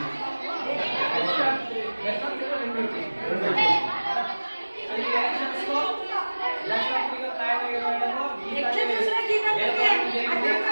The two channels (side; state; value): both; inverted; correlation -1.00